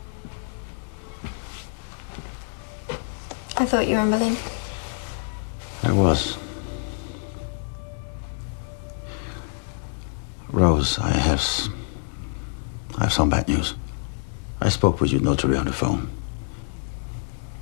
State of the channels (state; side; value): silent; right; digital silence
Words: I thought you were in Berlin. I was. Rose, I have some bad news. I spoke with your notary on the phone.